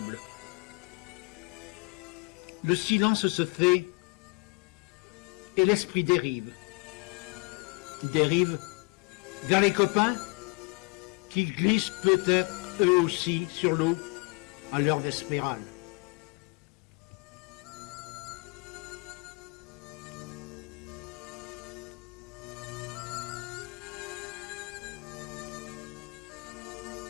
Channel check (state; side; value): quieter; right; 29.8 dB